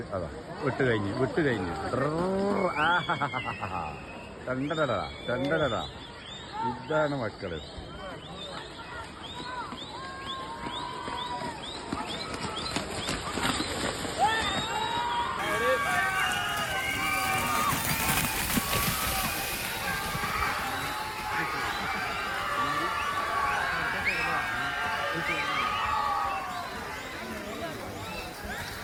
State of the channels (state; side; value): identical; both; correlation 1.00